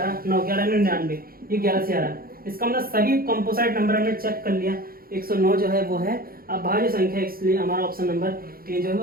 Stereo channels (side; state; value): left; late; 0.43 ms